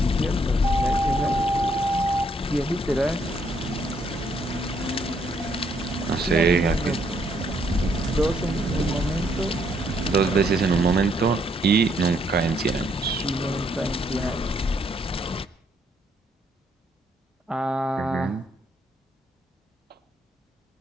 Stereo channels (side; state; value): both; normal; correlation 0.71